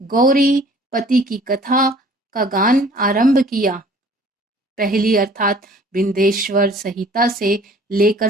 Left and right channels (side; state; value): both; normal; correlation 0.52